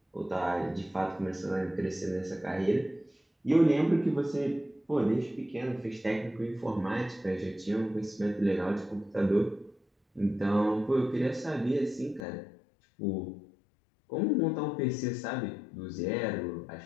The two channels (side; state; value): right; drops out; at 12.2 s